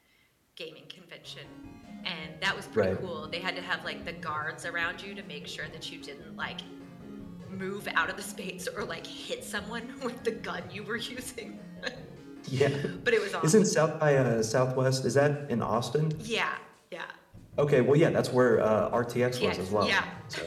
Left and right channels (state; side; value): identical; both; correlation 1.00